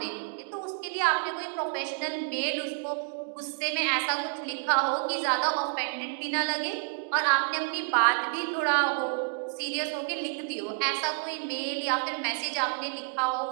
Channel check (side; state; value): left; silent; digital silence